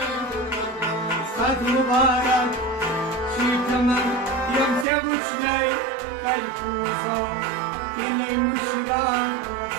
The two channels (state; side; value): drops out; left; at 4.9 s